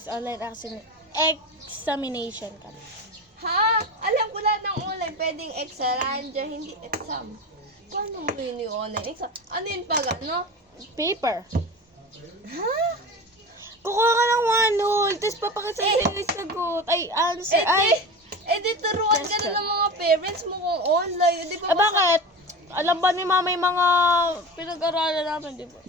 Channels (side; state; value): both; normal; correlation 0.29